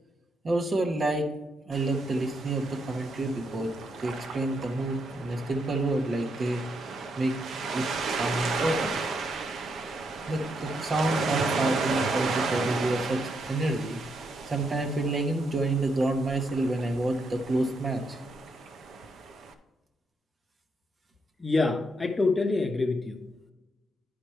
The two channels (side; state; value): both; normal; correlation 0.78